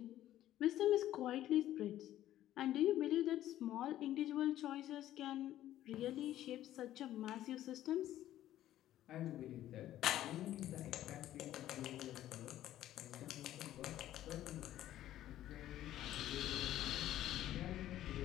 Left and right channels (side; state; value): right; quieter; 13.1 dB